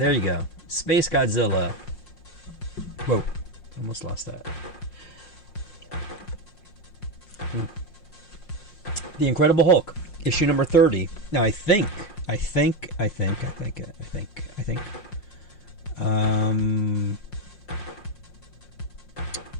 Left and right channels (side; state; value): right; late; 5.6 ms